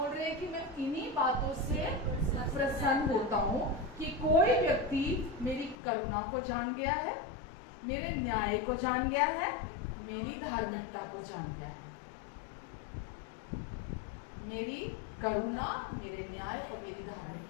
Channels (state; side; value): drops out; right; at 5.8 s